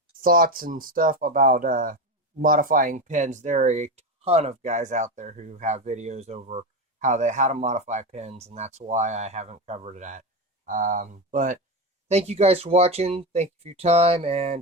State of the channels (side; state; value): both; normal; correlation 0.17